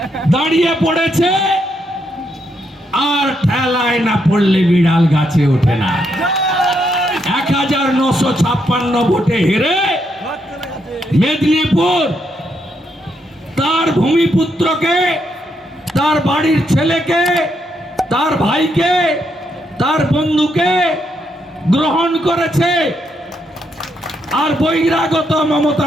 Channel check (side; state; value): both; normal; correlation 0.78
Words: দাঁড়িয়ে পড়েছে, আর ঠেলায় না পড়লে বিড়াল গাছে ওঠে না। 1956 ভোটে হেরে মেদিনীপুর তার ভূমিপুত্রকে, তার বাড়ির ছেলেকে, তার ভাইকে, তার বন্ধুকে গ্রহণ করেছে। আর বহিরাগত